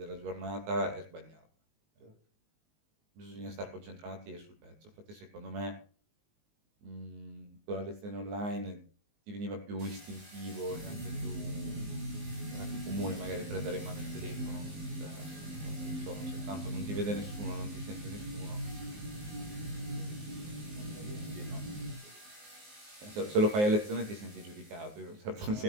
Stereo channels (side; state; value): left; late; 19 ms